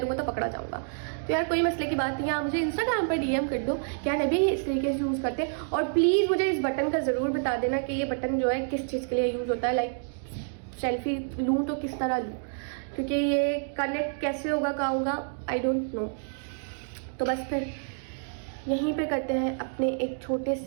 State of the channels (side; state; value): left; silent; digital silence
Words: तो पकड़ा जाऊँगा। तो यार कोई मसले की बात नहीं है, आप मुझे इंस्टाग्राम पर डीएम कर दो क्या नबी इस तरीके से यूज़ करते हैं, और प्लीज़ मुझे इस बटन का ज़रूर बता देना कि ये बटन जो है किस चीज़ के लिए यूज़ होता है। लाइक सेल्फी लूँ तो किस तरह लूँ, क्योंकि ये कनेक्ट कैसे होगा क्या होगा आई डोंट नो। तो बस फिर यहीं पे करते हैं अपने एक छोटे